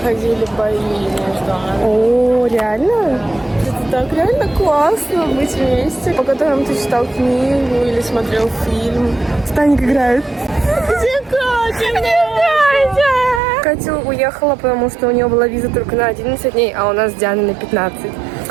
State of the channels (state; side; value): drops out; left; at 13.4 s